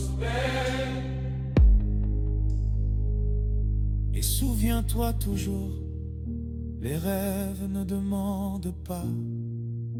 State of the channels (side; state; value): both; identical; correlation 1.00